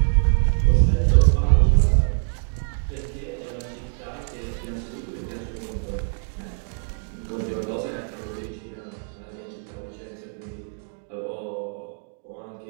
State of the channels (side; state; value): left; silent; 58 dB below the other